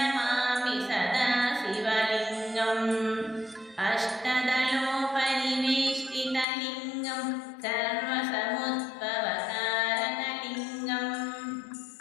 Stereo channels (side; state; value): right; drops out; at 6.5 s